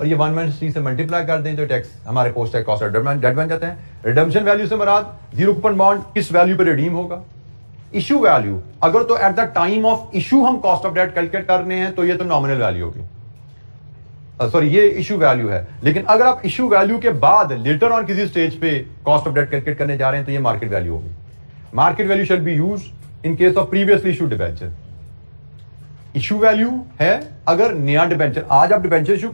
ये 1 - T से मल्टीप्लाई कर दें तो टैक्स हमारे post tax cost of debt बन जाते हैं। रिडम्पशन वैल्यू से मुराद जीरो कूपन बॉन्ड किस वैल्यू पर रिडीम होगा। इशू वैल्यू, अगर तो at the time of issue हम कॉस्ट ऑफ डेट कैलकुलेट करने हैं तो ये तो नॉमिनल वैल्यू होगी, सॉरी ये इशू वैल्यू है। लेकिन अगर आप इशू वैल्यू के बाद लेटर ऑन किसी स्टेज पे कॉस्ट ऑफ डेट कैलकुलेट करने जा रहे हैं तो ये मार्केट वैल्यू होगी। Market value shall be used in case of previously issue debenture. Issue value है अगर नया डिबेंचर, आज आप डिबेंचर इशू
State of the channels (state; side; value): inverted; both; correlation -1.00